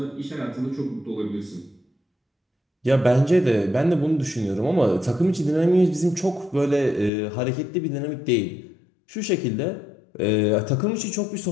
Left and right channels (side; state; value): right; drops out; at 7.1 s